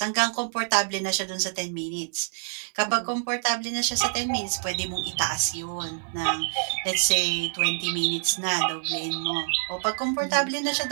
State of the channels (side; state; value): left; silent; digital silence